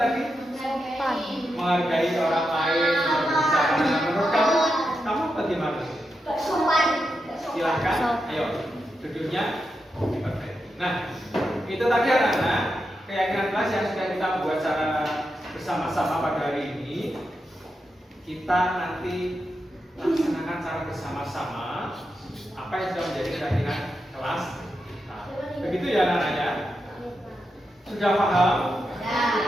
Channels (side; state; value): both; normal; correlation 0.87